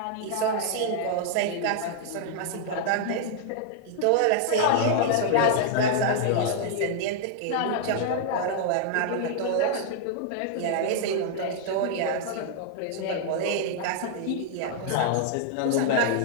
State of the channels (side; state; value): both; different; correlation -0.01